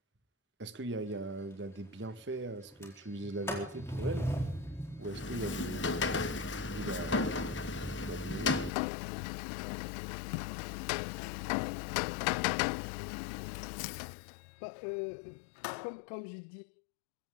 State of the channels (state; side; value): drops out; right; at 8.7 s